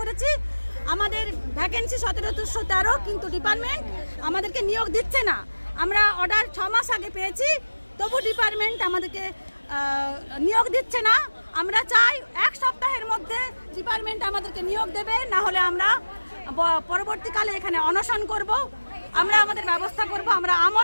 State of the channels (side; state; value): both; inverted; correlation -1.00